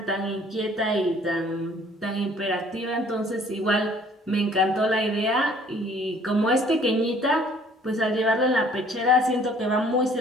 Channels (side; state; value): both; normal; correlation 0.57